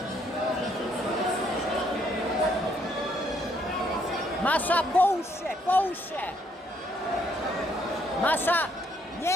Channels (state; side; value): normal; both; correlation 0.69